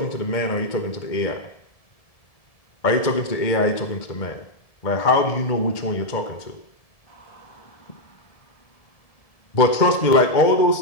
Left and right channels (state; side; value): late; right; 1.7 ms